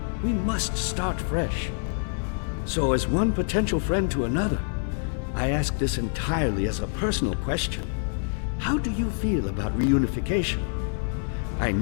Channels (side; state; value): right; silent; 61 dB below the other